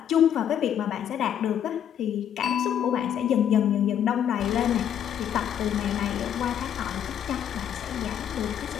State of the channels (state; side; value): quieter; right; 9.5 dB